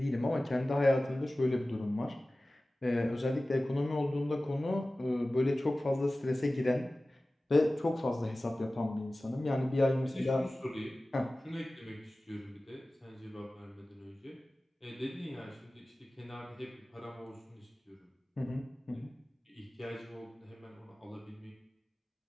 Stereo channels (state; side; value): normal; both; correlation 0.97